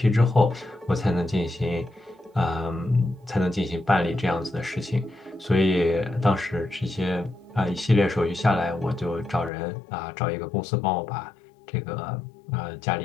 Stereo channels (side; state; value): right; drops out; at 9.5 s